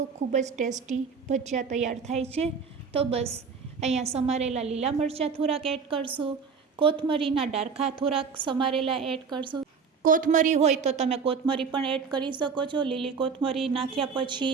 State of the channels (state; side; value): quieter; left; 5.7 dB